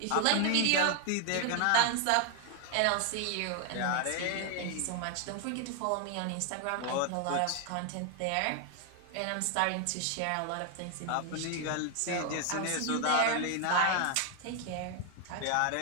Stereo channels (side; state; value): both; different; correlation 0.01